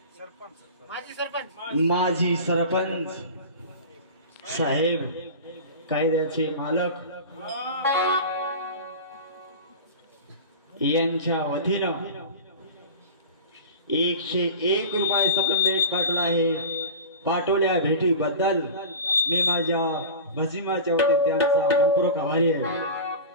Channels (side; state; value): both; inverted; correlation -0.32